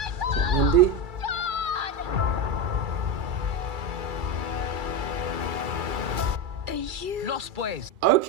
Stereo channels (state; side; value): late; left; 2.3 ms